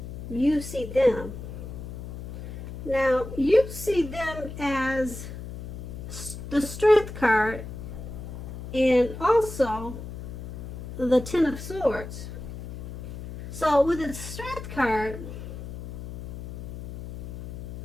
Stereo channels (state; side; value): noise; left; hum, 10 dB below the sound